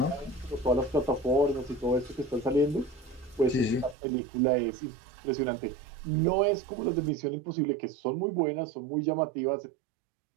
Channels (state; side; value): drops out; left; at 4.0 s